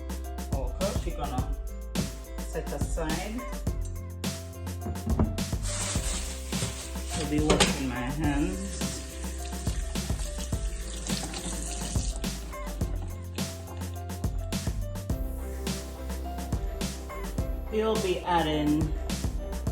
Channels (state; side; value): identical; both; correlation 1.00